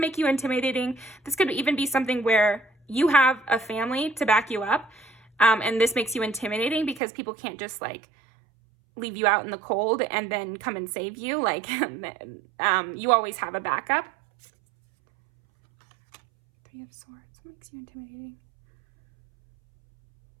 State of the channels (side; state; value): left; drops out; at 7.0 s